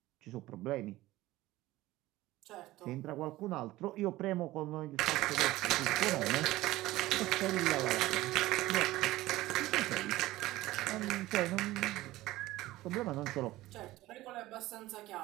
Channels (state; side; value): quieter; left; 17.2 dB